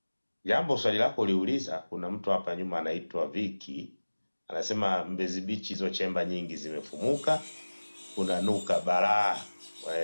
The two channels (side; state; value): both; inverted; correlation -1.00